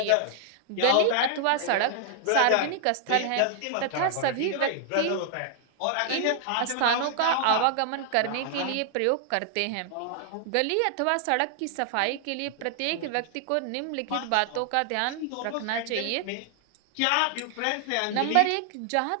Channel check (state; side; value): different; both; correlation 0.00